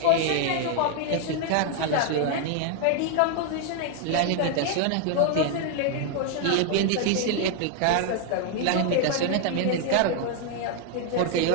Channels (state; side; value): different; both; correlation 0.00